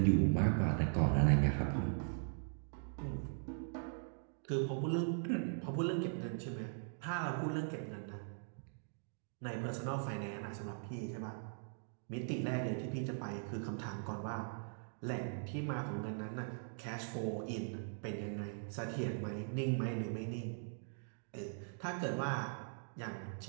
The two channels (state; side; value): silent; left; digital silence